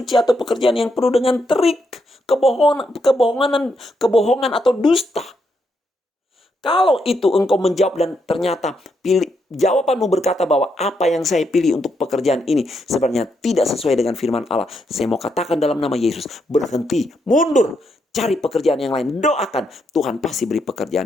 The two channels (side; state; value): both; normal; correlation 0.79